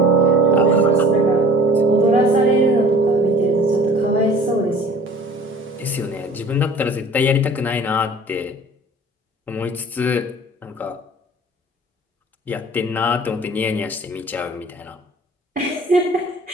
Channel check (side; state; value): both; normal; correlation 0.45